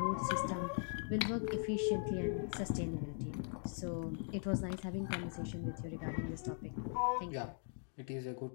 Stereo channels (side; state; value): right; silent; 51 dB below the other